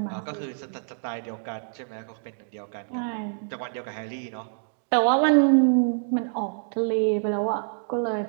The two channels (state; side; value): silent; left; digital silence